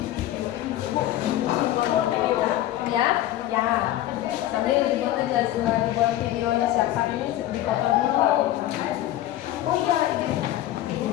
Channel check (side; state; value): right; quieter; 13.9 dB